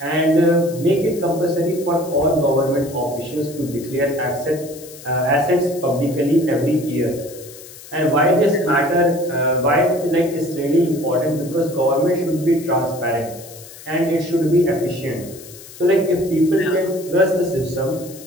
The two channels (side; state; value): left; noise; hiss, 18 dB below the sound